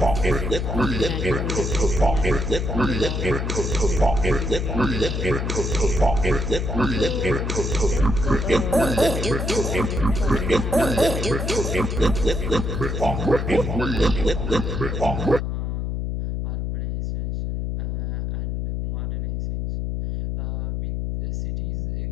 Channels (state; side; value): noise; left; hum, 2 dB below the sound